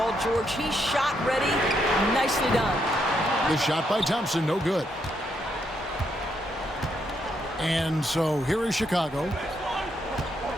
George. He's shot ready. Nicely done. The shot by Thompson, no good. And so here is Chicago.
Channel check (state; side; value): normal; both; correlation 0.77